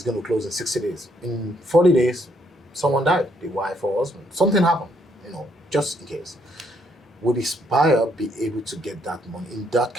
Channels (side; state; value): both; normal; correlation 0.71